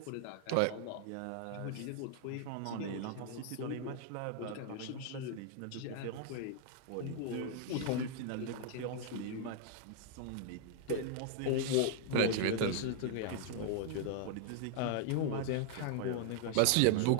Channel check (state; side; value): different; both; correlation 0.00